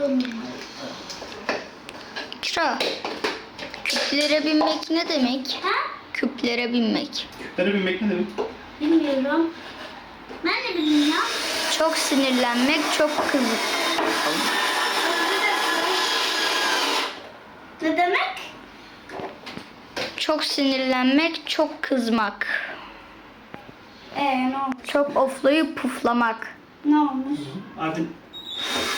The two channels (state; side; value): identical; both; correlation 1.00